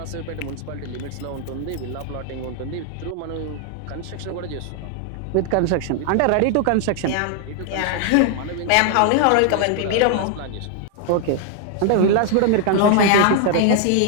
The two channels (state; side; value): different; both; correlation 0.00